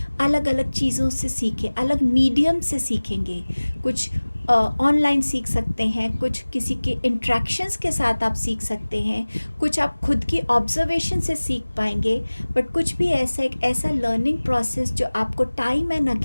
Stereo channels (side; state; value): both; inverted; correlation -1.00